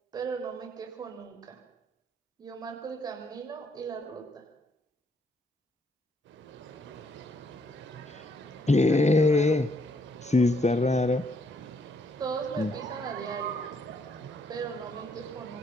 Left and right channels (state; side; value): normal; both; correlation 0.71